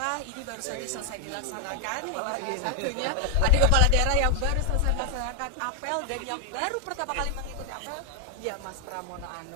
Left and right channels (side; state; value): both; different; correlation 0.00